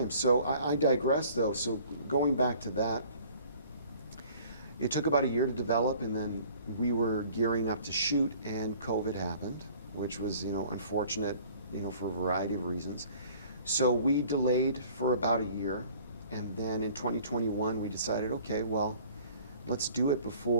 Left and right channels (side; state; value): both; inverted; correlation -0.52